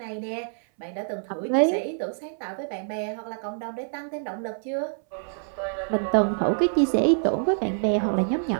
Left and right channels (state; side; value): silent; left; 61 dB below the other